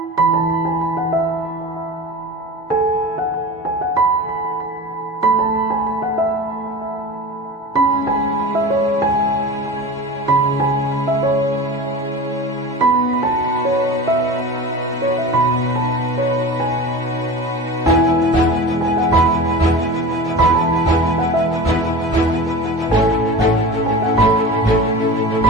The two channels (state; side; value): normal; both; correlation 0.32